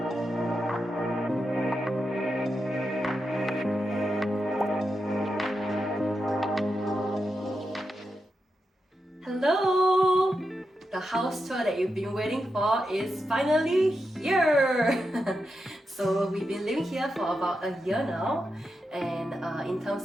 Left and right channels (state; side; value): normal; both; correlation 0.87